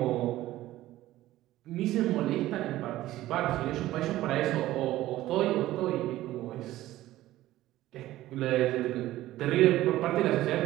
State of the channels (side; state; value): left; quieter; 15.5 dB